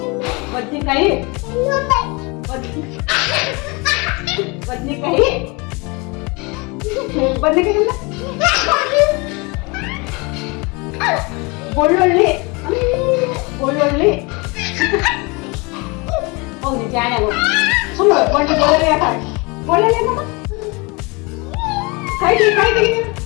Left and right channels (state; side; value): quieter; right; 27.9 dB